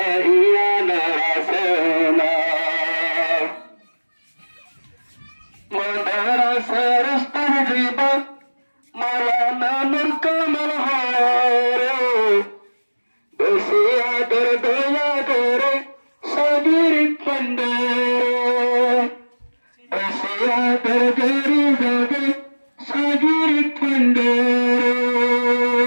ইয়ানের আসমান মাদ্রাসার স্তর জিবা মাওলানা নূর কামাল হরে বেশি আদর দয়া করে সাগির পন্দরে বেশি আদর গরি জাগে সাগির পন্দরে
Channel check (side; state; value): both; inverted; correlation -1.00